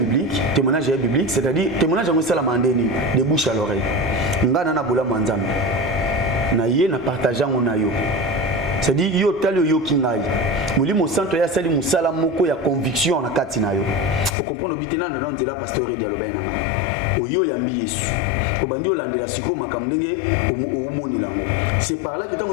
biblique, c'est-à-dire témoignage on sala mandeni de bouche à l'oreille. Ngana na bola manzambe. Na ye na partageant on a yo. C'est-à-dire yo talo yo kingai. Molimo santo ya sali musala moko ya conviction na kati na yo. O comprendre bitena na nzela pasteur dialogue na nga. O yo yambi Yesu. obandi olandela siko makambo ndenge omoni lango. C'est par là que tant que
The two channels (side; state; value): right; drops out; at 14.4 s